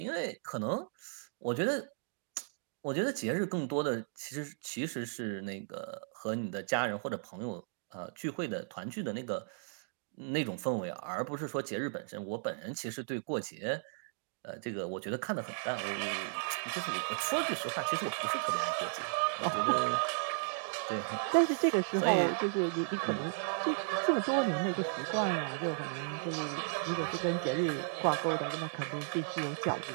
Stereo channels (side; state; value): left; silent; digital silence